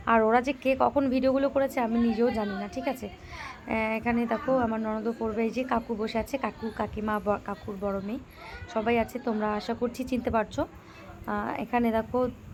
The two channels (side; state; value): both; identical; correlation 1.00